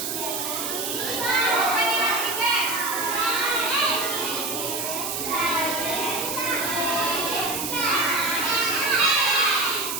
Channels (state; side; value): noise; right; hiss, 3 dB below the sound